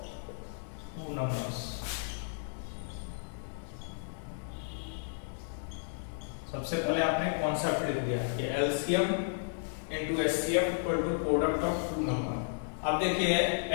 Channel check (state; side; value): silent; right; digital silence